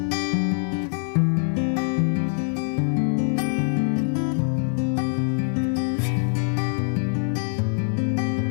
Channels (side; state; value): right; silent; 63 dB below the other